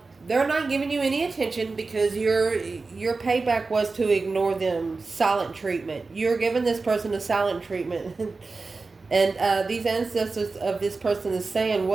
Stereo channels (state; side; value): quieter; left; 3.9 dB